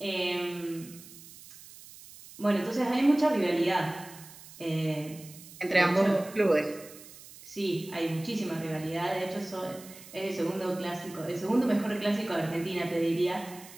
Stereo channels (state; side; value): noise; right; hiss, 18 dB below the sound